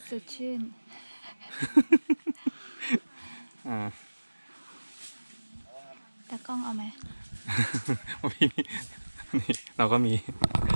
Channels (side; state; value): both; inverted; correlation -1.00